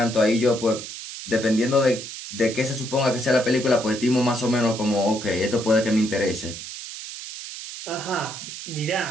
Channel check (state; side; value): noise; right; hiss, 10 dB below the sound